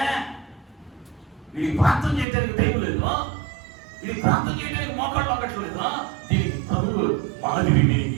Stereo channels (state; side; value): drops out; left; at 2.2 s